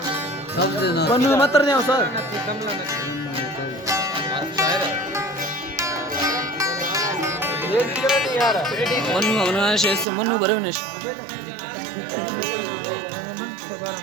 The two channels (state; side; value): drops out; left; at 10.1 s